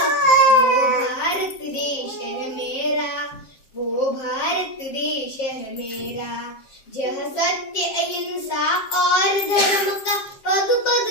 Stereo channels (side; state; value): right; late; 7.5 ms